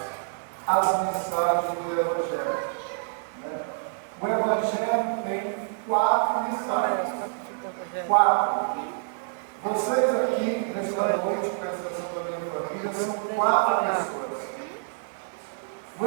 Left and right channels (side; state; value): left; silent; digital silence